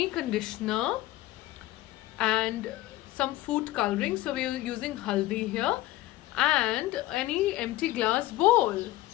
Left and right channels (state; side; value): quieter; right; 16.9 dB